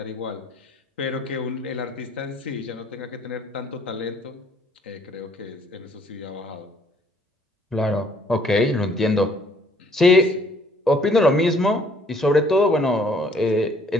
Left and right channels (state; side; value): normal; both; correlation 0.61